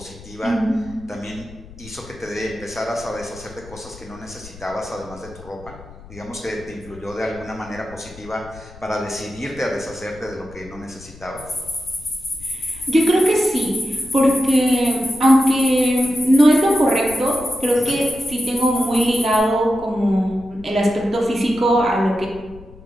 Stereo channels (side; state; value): left; noise; rumble, 19 dB below the sound